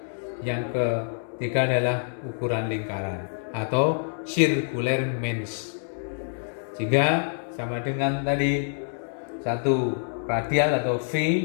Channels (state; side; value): silent; right; digital silence